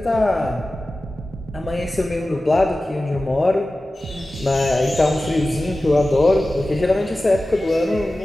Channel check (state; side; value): normal; both; correlation 0.95